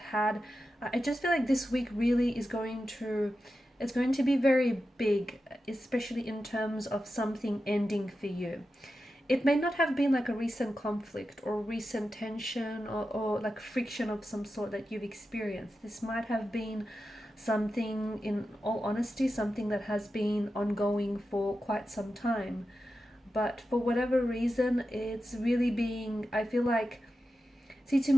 I just feel like this week really is going to, it's going to be very big, especially in terms of something ending for you. It may not have been like a recent conflict or recent tension or like friction of some sort that you've experienced. This might have been something, in all honesty, something that has been ongoing for quite some time. But for whatever reason, it's really being, I feel like, see, to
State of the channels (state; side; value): normal; both; correlation 0.91